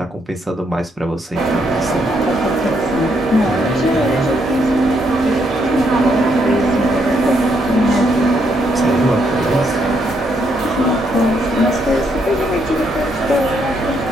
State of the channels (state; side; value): normal; both; correlation 0.75